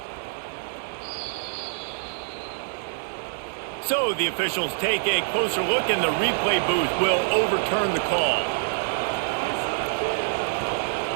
So the officials take a closer look and the replay booth will overturn the call.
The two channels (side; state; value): left; silent; 60 dB below the other